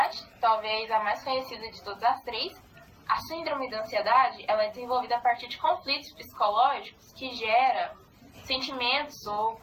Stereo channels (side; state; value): both; identical; correlation 1.00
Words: talvez a mais conhecida de todas as 3. A síndrome da ansiedade ela é desenvolvida a partir de conflitos psicológicos que geram sentimentos ou